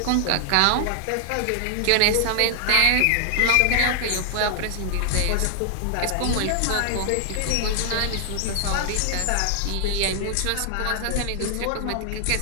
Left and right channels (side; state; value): both; different; correlation 0.00